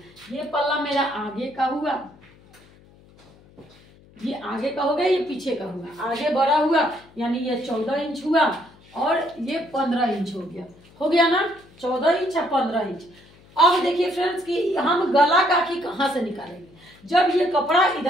ये पल्ला मेरा आगे का हुआ, ये आगे का हो गया, ये पीछे का हुआ, आगे बड़ा हुआ यानी ये 14 इंच हुआ और ये 15 इंच हो गया ना, 14 इंच या 15 इंच। अब देखिए फ्रेंड्स कि हम गला काठी कहाँ से निकालेंगे। जब ये कपड़ा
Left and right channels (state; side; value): noise; left; hum, 27 dB below the sound